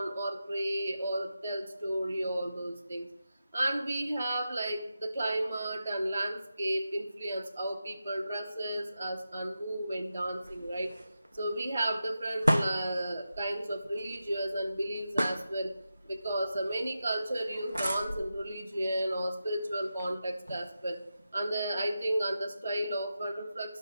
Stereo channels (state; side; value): inverted; both; correlation -0.90